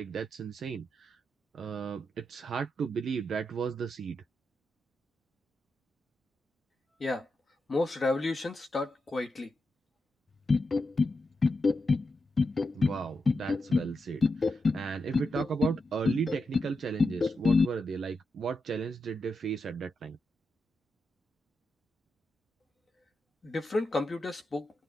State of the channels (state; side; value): normal; both; correlation 0.87